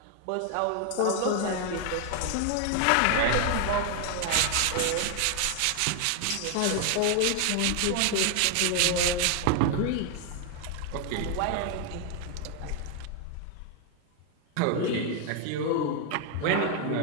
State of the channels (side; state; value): both; different; correlation 0.00